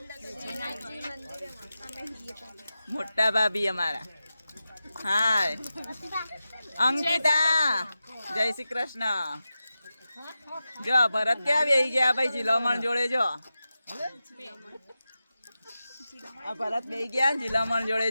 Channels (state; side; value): inverted; both; correlation -0.93